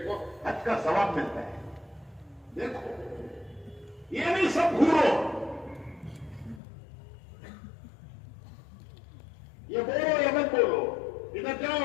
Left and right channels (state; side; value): drops out; right; at 6.6 s